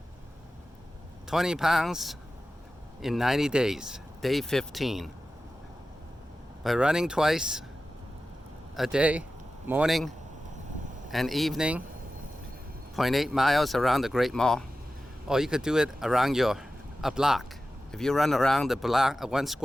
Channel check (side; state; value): both; normal; correlation 0.94